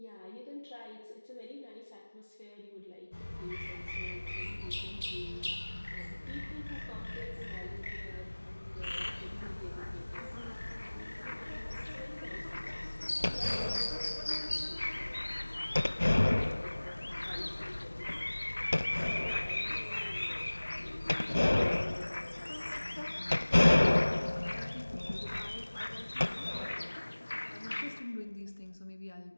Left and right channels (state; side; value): inverted; both; correlation -1.00